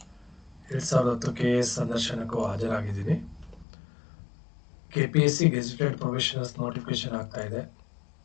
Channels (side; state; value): right; drops out; at 3.7 s